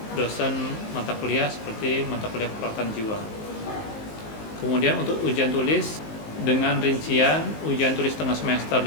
dosen mata kuliah seperti mata kuliah keperawatan jiwa. Kemudian untuk ujian tulis dengan rincian ujian tulis tengah semester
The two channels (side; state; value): right; late; 19 ms